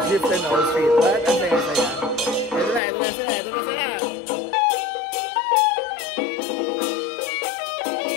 Jeep and all street. But ang saya-saya. Ito na sila.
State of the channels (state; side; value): drops out; right; at 2.8 s